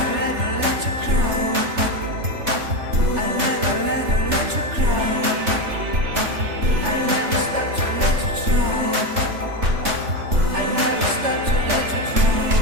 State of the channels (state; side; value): late; left; 3.4 ms